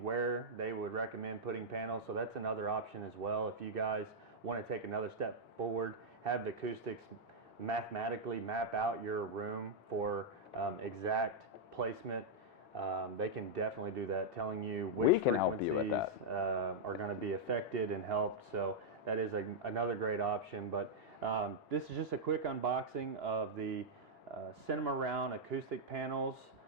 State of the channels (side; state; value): both; normal; correlation -0.05